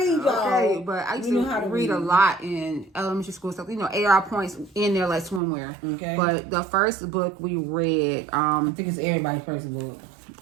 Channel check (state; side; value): drops out; left; at 5.4 s